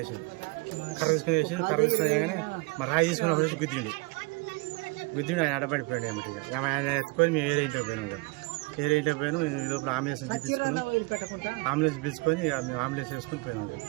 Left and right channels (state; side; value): quieter; left; 25.9 dB